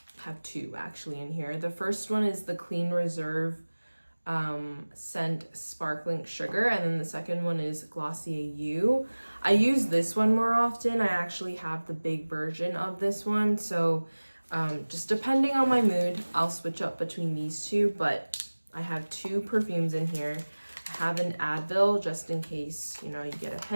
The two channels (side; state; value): both; inverted; correlation -1.00